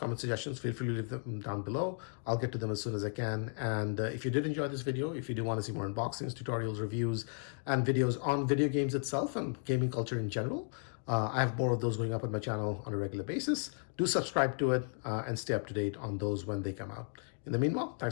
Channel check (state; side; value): silent; right; 55 dB below the other